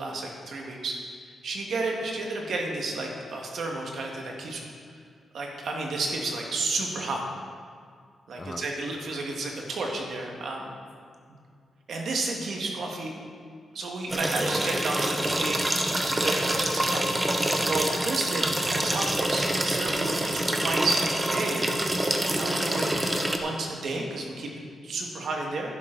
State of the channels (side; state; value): both; normal; correlation 0.89